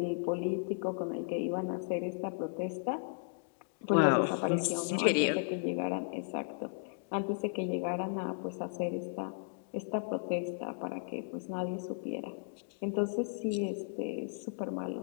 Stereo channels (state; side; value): silent; right; digital silence